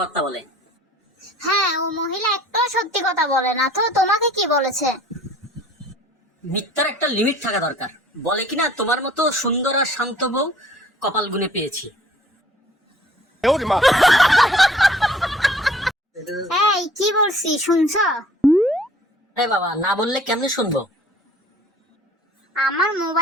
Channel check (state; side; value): normal; both; correlation 0.52